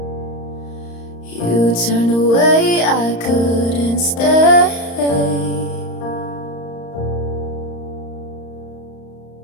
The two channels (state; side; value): late; right; 35 ms